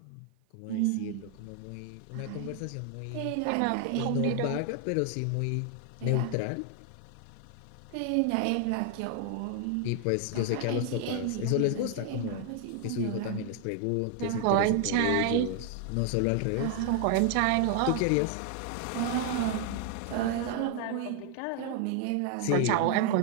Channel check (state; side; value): different; both; correlation 0.00